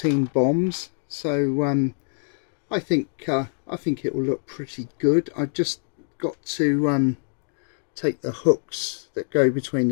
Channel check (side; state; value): right; silent; 60 dB below the other